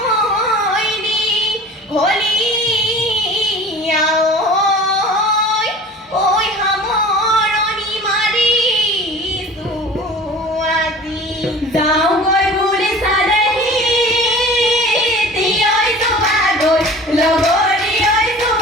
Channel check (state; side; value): normal; both; correlation 0.41